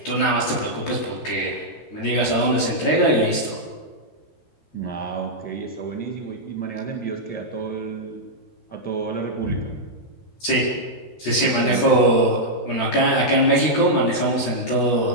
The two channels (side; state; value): right; late; 13 ms